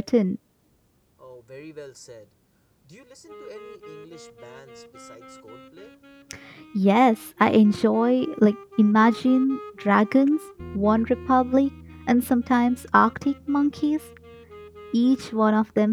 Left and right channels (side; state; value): both; identical; correlation 1.00